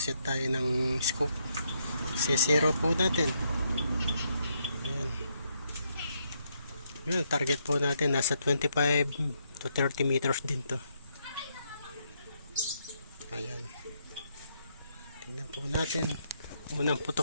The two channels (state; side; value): inverted; both; correlation -0.76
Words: tayo ng scope. Sisero po natin. Ayan. Yun, target po natin nasa 25 to 30 meters din to. Ayan. Tingnan po natin. Unang